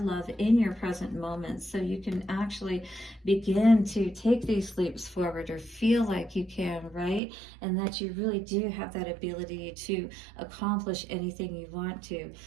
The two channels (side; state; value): left; drops out; at 7.2 s